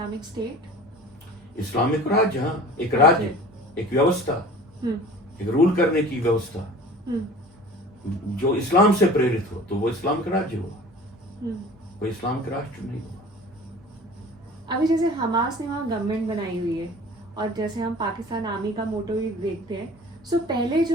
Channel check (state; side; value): normal; both; correlation 0.43